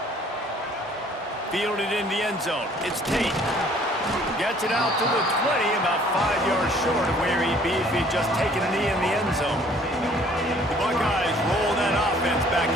Fielded in the end zone. It's Tate. Gets it out to the 20, about 5 yards short of where he'd be if he'd just taken a knee in the end zone. The Buckeyes roll that offense back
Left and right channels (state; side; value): normal; both; correlation 0.57